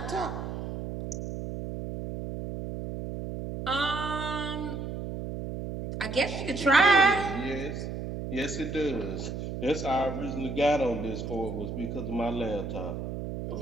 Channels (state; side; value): noise; right; hum, 6 dB below the sound